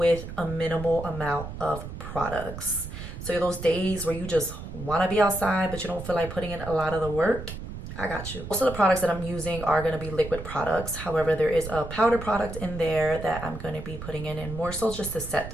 a minimal amount of products. So those days where you just want to be outside but you don't feel like putting in a lot of the work, I got you. Most of the products that I'm using are going to be liquid products. However, there is a powder product in there that I'm going to be putting in and more so just to set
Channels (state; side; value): noise; right; rumble, 9 dB below the sound